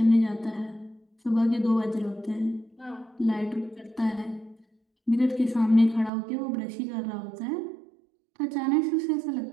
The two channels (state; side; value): drops out; left; at 6.1 s